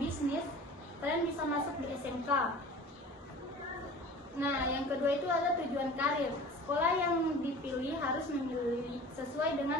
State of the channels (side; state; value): both; normal; correlation 0.41